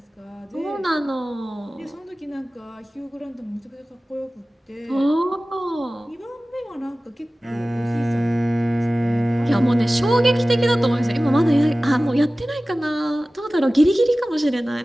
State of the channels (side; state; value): both; normal; correlation 0.97